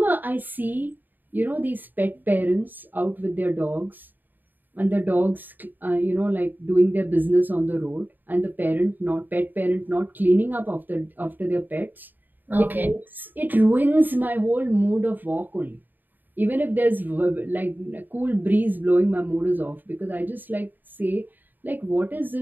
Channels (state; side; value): late; left; 0.089 ms